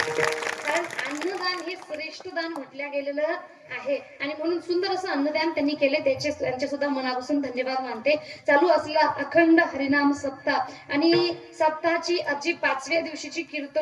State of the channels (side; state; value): both; identical; correlation 1.00